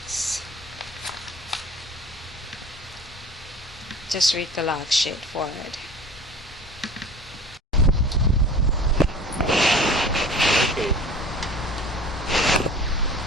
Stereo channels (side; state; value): both; normal; correlation 0.42